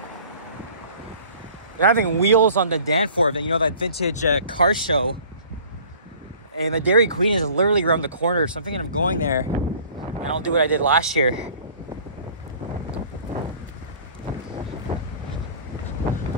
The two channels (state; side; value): inverted; both; correlation -0.48